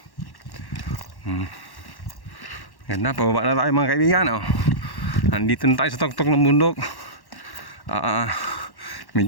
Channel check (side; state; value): right; late; 1.1 ms